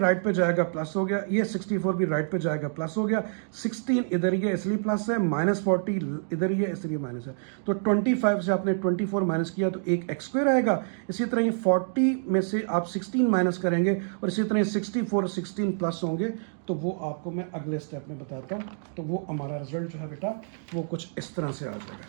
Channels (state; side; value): silent; left; digital silence